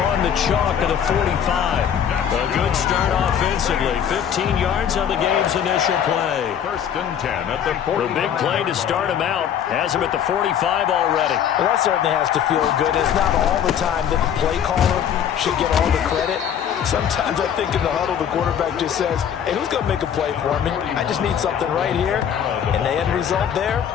on the chalk of the 45. A good start offensively. 15 yards on the game's initial play. 1st and 10 at the 40. The big play to start him out has him at the 45 already. Well, that certainly has to feel good. It's not all the time that the play caller should get all the credit. Sometimes I think in the huddle, the quarterback just says, hey, who's going to make a play for me? I just need something right here. And the end result there,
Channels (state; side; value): quieter; right; 8.8 dB